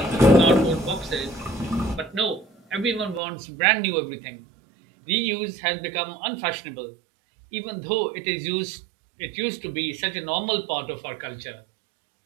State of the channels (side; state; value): left; drops out; at 3.2 s